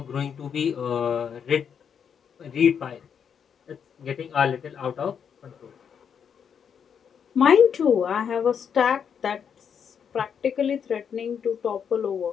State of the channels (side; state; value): right; quieter; 7.4 dB